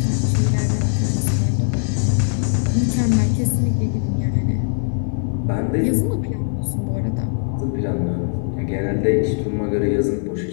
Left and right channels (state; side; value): silent; right; 55 dB below the other